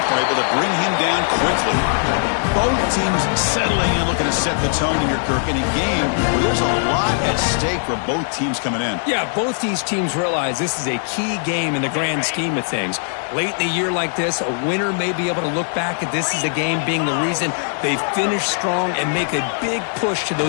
able to bring him down quickly. Both teams settling in, looking to set the tone here, Kirk, in a game where there's a lot at stake for both teams coming in. Yeah, both these teams realize this is a key game in the grand scheme of things. Late in a year like this, a winner may be able to look back at this as a game being the reason they finish strong and make a big push to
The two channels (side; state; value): right; silent; 61 dB below the other